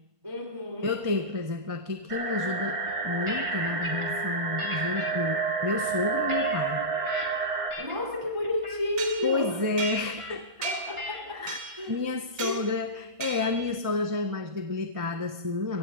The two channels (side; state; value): left; late; 1.5 ms